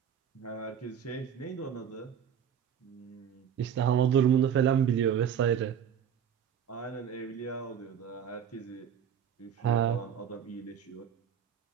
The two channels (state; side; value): quieter; left; 8.4 dB